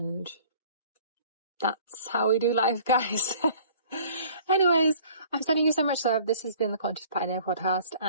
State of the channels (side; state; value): both; inverted; correlation -0.51